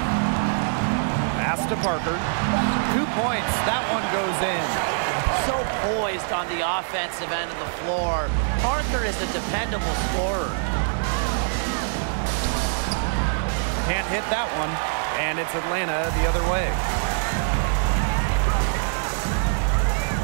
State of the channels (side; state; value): left; silent; digital silence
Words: Pass to Parker. 2 points. That one goes in. So poised on the offensive end of the floor. Parker is a dependable scorer. Can't hit that one. And it's Atlanta the other way.